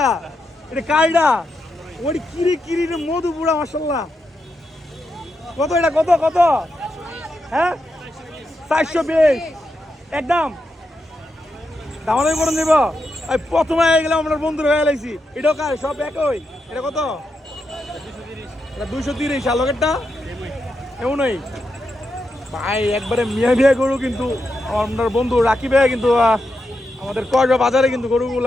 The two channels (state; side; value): normal; both; correlation 0.85